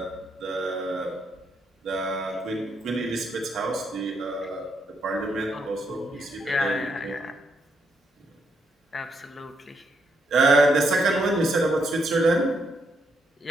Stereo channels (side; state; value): both; normal; correlation 0.77